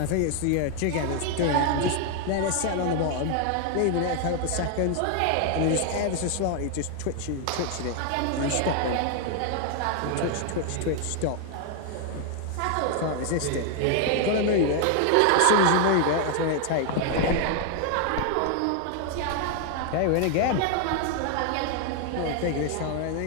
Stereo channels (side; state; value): both; different; correlation 0.00